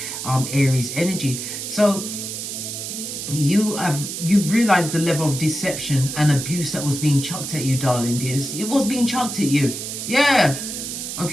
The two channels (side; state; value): right; noise; hiss, 6 dB below the sound